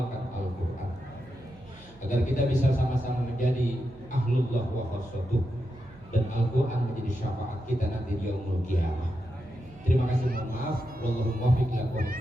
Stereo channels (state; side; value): noise; right; hum, 23 dB below the sound